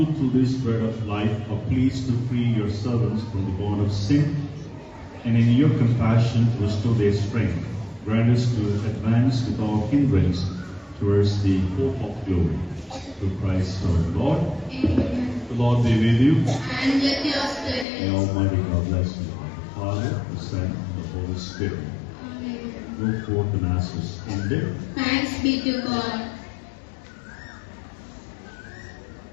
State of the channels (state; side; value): drops out; right; at 17.9 s